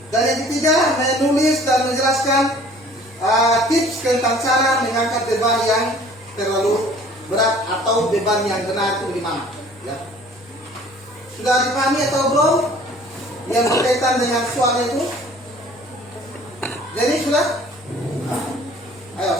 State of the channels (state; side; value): normal; both; correlation 0.51